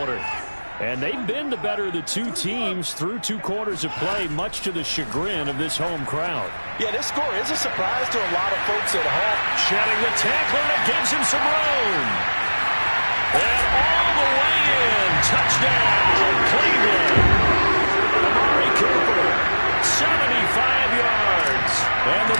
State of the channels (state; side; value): inverted; both; correlation -1.00